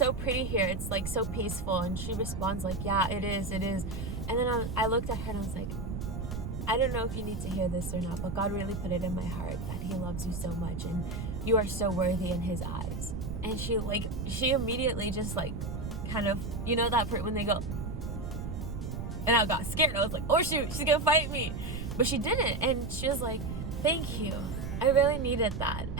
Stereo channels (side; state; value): right; noise; rumble, 5 dB below the sound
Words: pretty here, it's like so peaceful. And she responds like, yeah, it is. And then I looked at her and I was like, I don't know if you need to hear this or not, but God really put it in my heart that he loves you so much and you are so worthy in his eyes. And she immediately just like kind of, you know that part when they go, and I got scared. I was like, oh shoot, she's gonna fight me. But she didn't, and she was like, thank you, I really needed that,